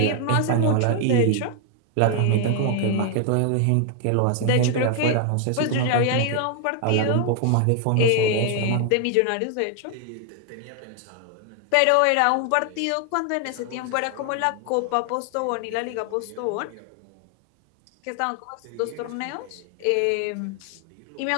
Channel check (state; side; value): different; both; correlation 0.00